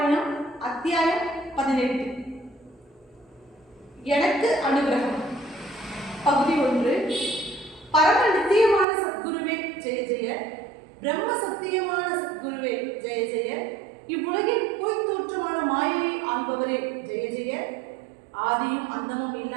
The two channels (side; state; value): left; drops out; at 8.8 s